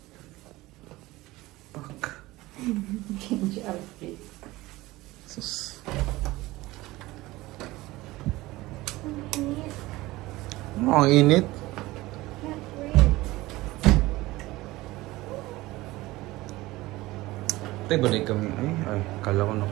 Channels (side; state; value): left; quieter; 19.1 dB